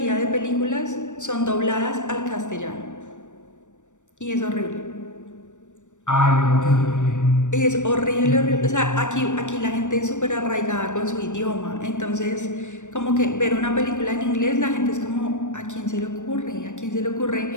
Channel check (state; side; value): late; right; 0.85 ms